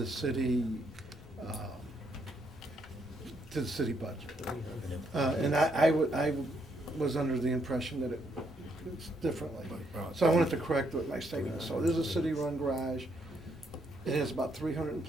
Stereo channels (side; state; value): both; normal; correlation 0.74